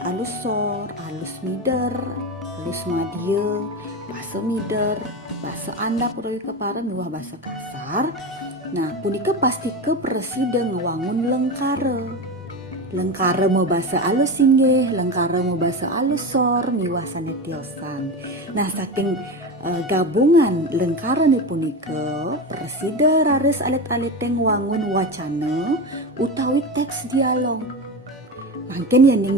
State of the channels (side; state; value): both; normal; correlation 0.22